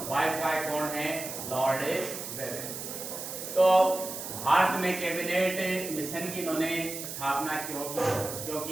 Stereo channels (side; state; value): right; noise; hiss, 8 dB below the sound